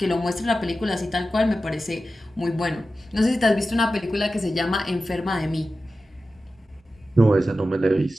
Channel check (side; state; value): both; normal; correlation 0.93